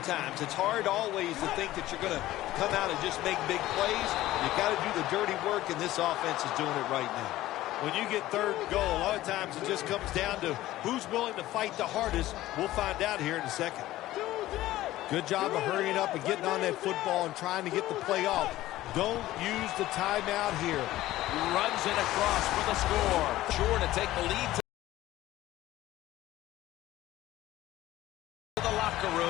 It's hard always to think that you're going to come out and just make big plays. You got to do the dirty work, and this offense is doing it right now. When you get third and goal, a lot of times it just comes down to who's willing to fight the hardest. We'll find out here in a second. Good job of hurrying up and getting on that football and trying to get the play off. Don't use the timeout here. Runs it across for the score. Sure to take the lead to the locker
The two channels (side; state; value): right; quieter; 15.6 dB